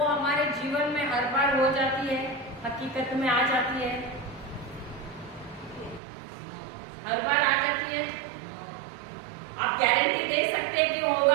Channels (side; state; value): left; drops out; at 6.0 s